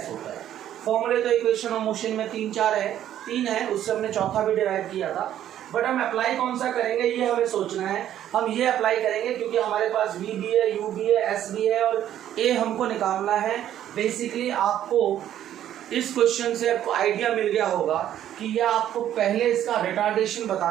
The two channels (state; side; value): quieter; left; 11.3 dB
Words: होता है। फॉर्मूले तो इक्वेशन ऑफ मोशन में 3 है, उससे हमने चौथा भी डिराइव किया था। बट हम अप्लाई कौन सा करेंगे ये हमें सोचना है। हम ये अप्लाई करेंगे क्योंकि हमारे पास v भी है, u भी है, s भी है और a हमको निकालना है। बेसिकली आपको इस क्वेश्चन से आपको आइडिया मिल गया होगा कि यह आपको पहले इसका रिटार्डेशन